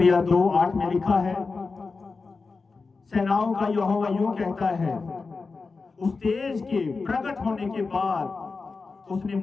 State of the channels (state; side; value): quieter; right; 4.3 dB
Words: 2:8 में लिखा है, सेनाओं का यहोवा यूं कहता है, उस तेज के प्रकट होने के बाद उसने